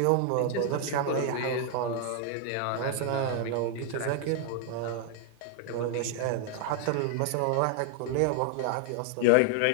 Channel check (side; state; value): both; different; correlation 0.00